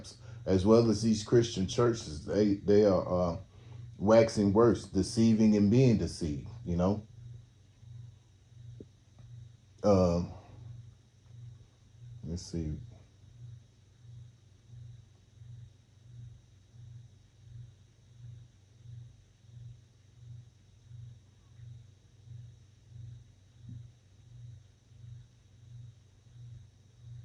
as well as these Christian churches, they are waxing worse, deceiving and being deceived. Um, let's see.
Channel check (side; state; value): both; identical; correlation 1.00